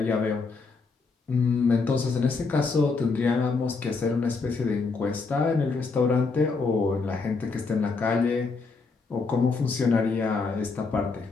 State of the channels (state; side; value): quieter; right; 4.3 dB